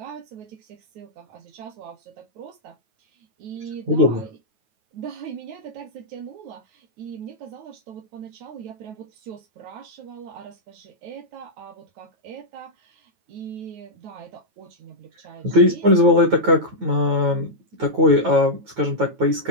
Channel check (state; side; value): late; left; 9.3 ms